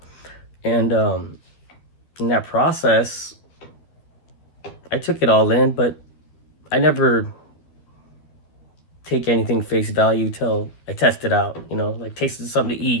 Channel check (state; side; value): late; right; 12 ms